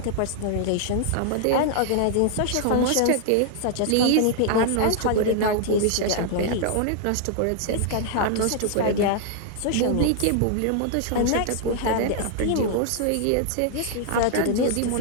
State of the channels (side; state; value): both; different; correlation 0.00